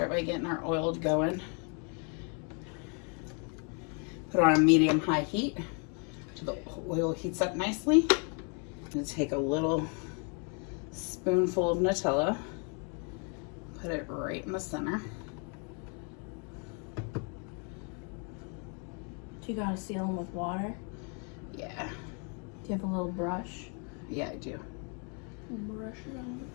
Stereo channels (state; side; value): quieter; right; 37.8 dB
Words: by getting our oil going. Put it on a medium-high heat till the oil heats up nicely. I'm gonna take a little spoonful of Nutella, put it right in the center. Do you gotta seal them with water? Yeah, Do you have a little brush? yeah, I do. Brush it on.